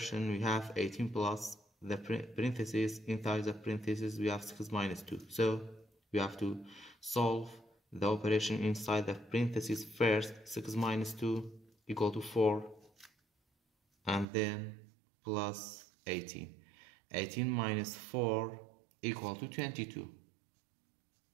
we have 18 plus the parentheses. Inside the parentheses we have 6 minus 2. So we have to solve the operation inside the parentheses first. 6 minus 2 equal to 4, and then plus 18. 18 minus 4 equal to 22.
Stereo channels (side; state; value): left; drops out; at 14.2 s